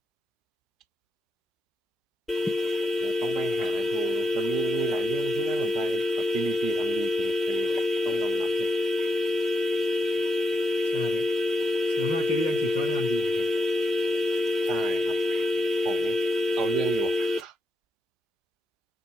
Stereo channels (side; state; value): both; normal; correlation 0.84